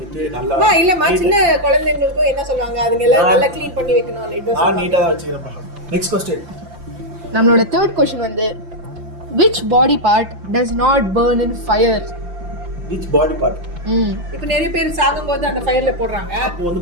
நல்லா இல்ல, சின்ன குழந்தைகளுக்கு என்ன சொல்லுவாங்க, அதுங்க எல்லாம் நல்லா க்ளீன் பண்ணி வைக்கணும். நான் நீட்டா தான் வச்சுக்கிறேன்ப்பா. Next question. நம்மளோட third question வந்து which body part does not burn in fire? which body part? இப்ப நிறைய பேர் சாகும்போது அந்த ஃபயர்ல போடுறாங்க. அப்போ வந்து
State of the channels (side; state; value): left; late; 5.8 ms